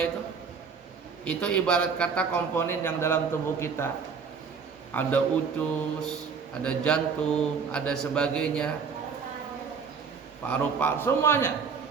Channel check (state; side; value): quieter; left; 5.8 dB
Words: itu ibarat kata komponen yang dalam tubuh kita. Ada usus, ada jantung, ada sebagainya, paru-paru, semuanya.